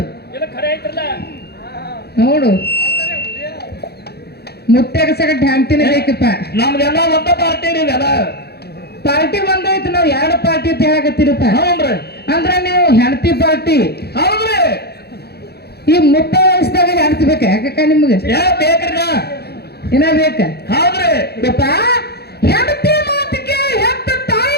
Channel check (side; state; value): right; late; 0.47 ms